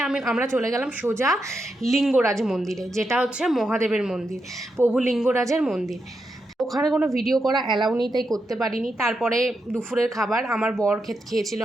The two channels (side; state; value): both; normal; correlation 0.85